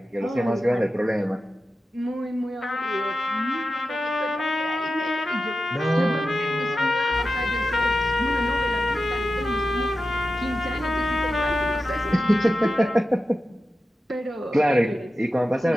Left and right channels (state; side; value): normal; both; correlation 0.92